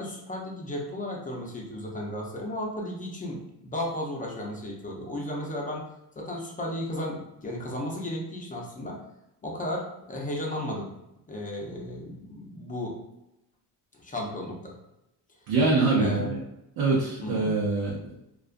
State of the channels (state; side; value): normal; both; correlation 0.18